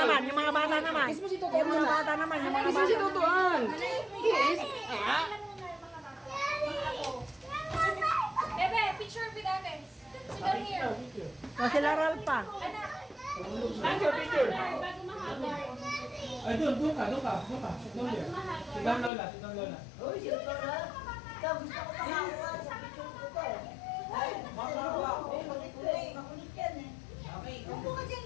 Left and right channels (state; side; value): drops out; right; at 19.1 s